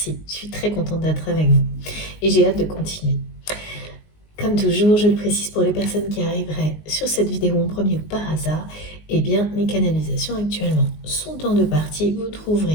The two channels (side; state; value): right; late; 19 ms